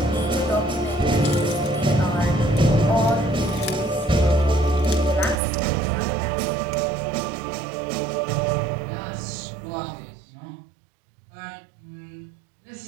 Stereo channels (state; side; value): drops out; left; at 5.4 s